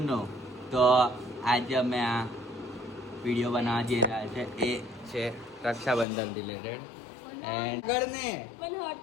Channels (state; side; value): drops out; right; at 6.1 s